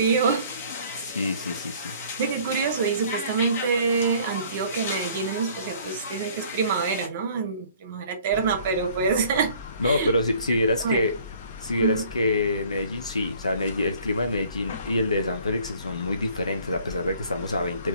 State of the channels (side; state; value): both; inverted; correlation -0.55